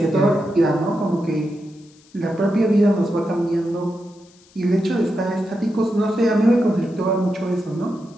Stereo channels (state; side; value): noise; left; hiss, 29 dB below the sound